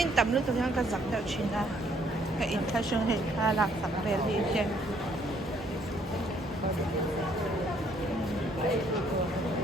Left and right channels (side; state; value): both; normal; correlation 0.66